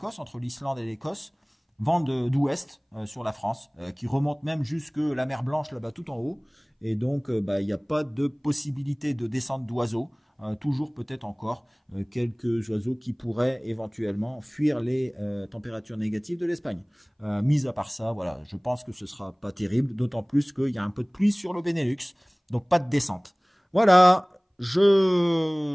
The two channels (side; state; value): both; identical; correlation 1.00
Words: entre l'Islande et l'Écosse, vent d'ouest sur la France, qui remonte même jusque la mer Blanche, là-bas tout en haut. Et donc, il n'y a pas de possibilité de descente d'oiseaux. Toujours peut-être encore quelques oiseaux qui pourraient éventuellement fuir les températures négatives de l'Espagne. Mis à part ça, voilà, je pense que ce ne sera pas terrible, d'autant plus qu'il y a un peu de pluie sur le Benelux. Donc pas de descente. Voilà,